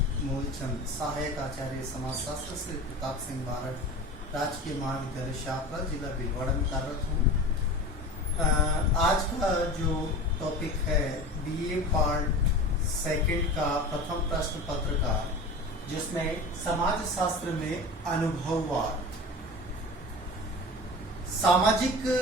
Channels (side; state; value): both; normal; correlation 0.33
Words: मूलचंद सहायक आचार्य समाजशास्त्र श्री प्रताप सिंह बारड, राजकीय महाविद्यालय शाहपुरा, जिला भीलवाड़ा में कार्यरत हूँ। आज का जो टॉपिक है बीए पार्ट सेकंड का प्रथम प्रश्न पत्र का, जिसमें समाज शास्त्र में अनुभववाद, सामाजिक